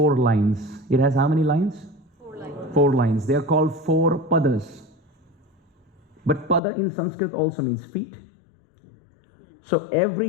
lines. It has how many lines? 4 lines. 4 lines. They are called 4 padas. But pada in Sanskrit also means feet. So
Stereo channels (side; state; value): right; drops out; at 6.6 s